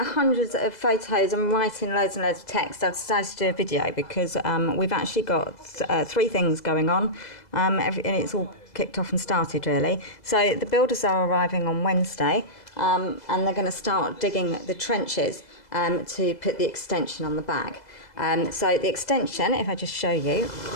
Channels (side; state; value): right; late; 2.0 ms